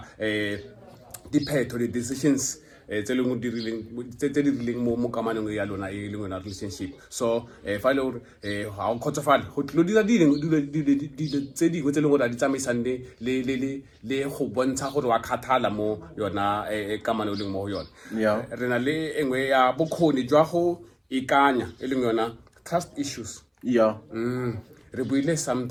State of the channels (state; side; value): identical; both; correlation 1.00